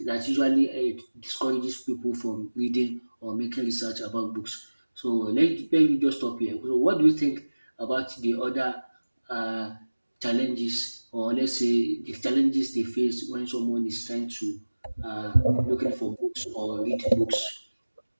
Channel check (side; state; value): both; inverted; correlation -1.00